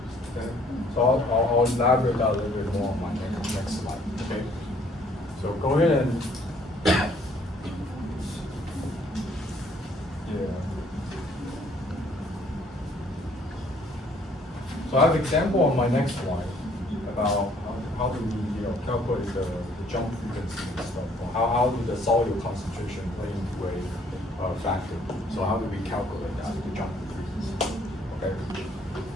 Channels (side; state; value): both; normal; correlation 0.62